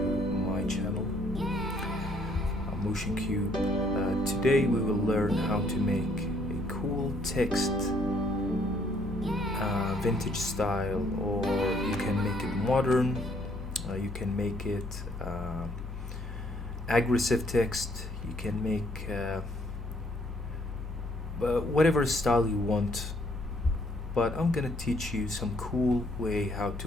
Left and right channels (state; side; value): normal; both; correlation 0.66